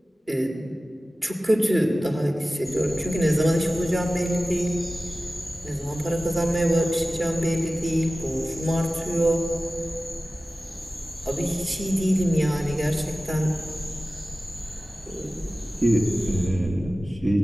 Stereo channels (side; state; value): both; normal; correlation 0.96